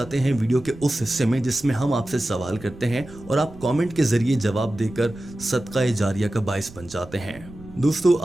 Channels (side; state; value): right; noise; rumble, 19 dB below the sound